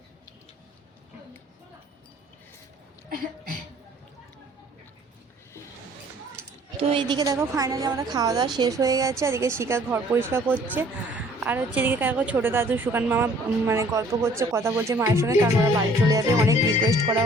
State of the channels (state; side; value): normal; both; correlation 0.56